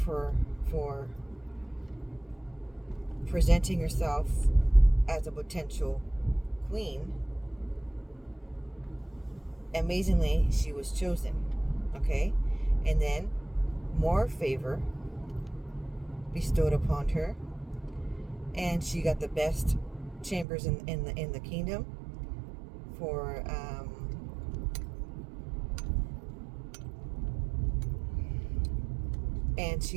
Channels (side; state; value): left; drops out; at 20.5 s